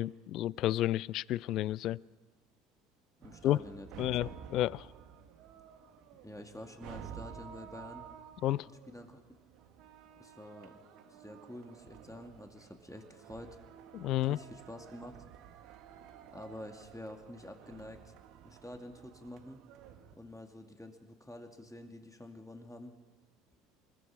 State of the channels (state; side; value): quieter; right; 9.9 dB